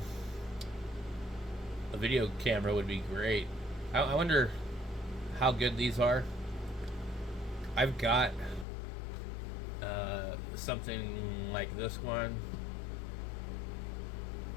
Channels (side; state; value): right; drops out; at 8.7 s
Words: video camera would be great. I wonder how good these are. I've got something like this one.